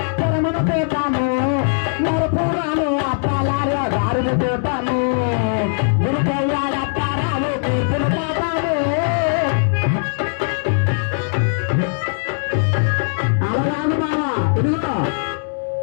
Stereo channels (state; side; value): silent; right; digital silence